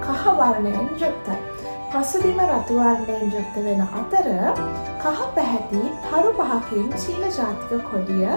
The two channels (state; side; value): inverted; both; correlation -1.00